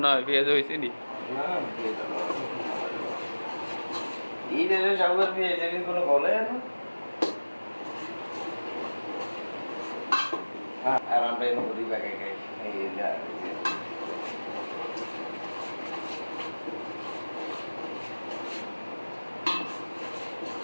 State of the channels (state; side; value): inverted; both; correlation -1.00